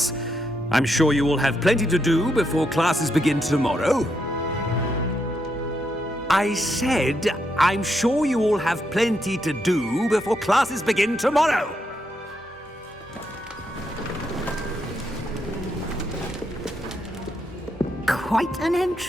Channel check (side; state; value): both; normal; correlation 0.80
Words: I'm sure you will have plenty to do before classes begin tomorrow. I said, I'm sure you all have plenty to do before classes begin tomorrow. Quite an